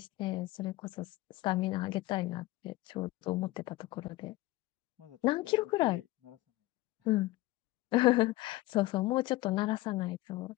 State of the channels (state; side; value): quieter; right; 18.8 dB